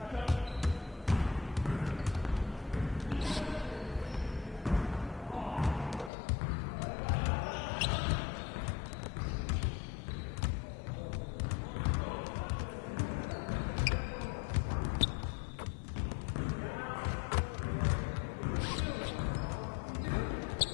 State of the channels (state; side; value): drops out; right; at 6.1 s